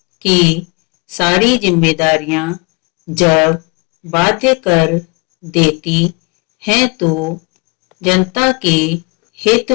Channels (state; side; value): quieter; right; 30.8 dB